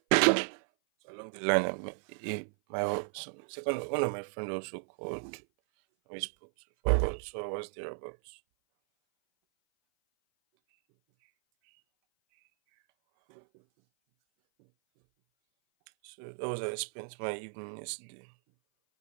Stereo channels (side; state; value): left; silent; 56 dB below the other